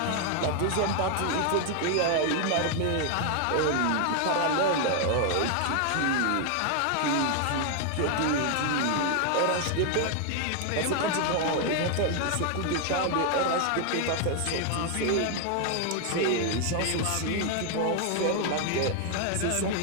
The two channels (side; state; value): both; different; correlation 0.00